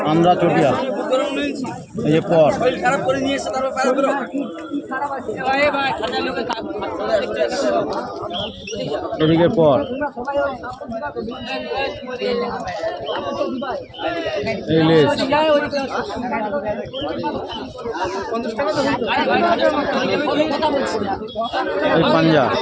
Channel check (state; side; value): identical; both; correlation 1.00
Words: আন্দ্রা চটিয়াল, এই যে পর এদিকে পর, এই লেজ, এই পাঞ্জা,